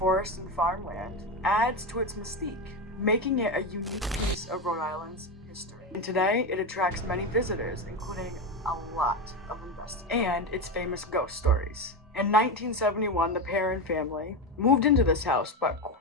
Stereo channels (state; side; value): normal; both; correlation 0.15